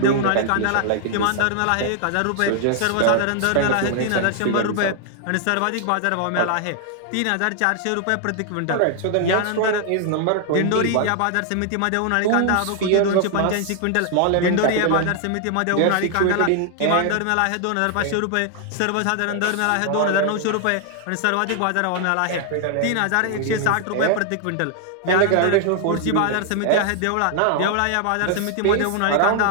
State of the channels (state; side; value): different; both; correlation 0.00